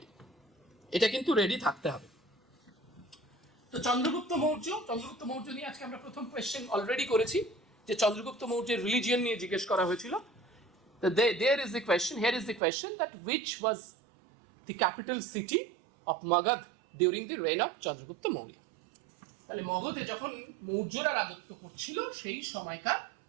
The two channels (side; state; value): left; drops out; at 12.6 s